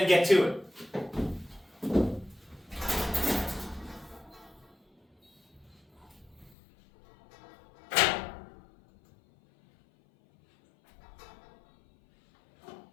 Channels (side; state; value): right; drops out; at 6.6 s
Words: get to it.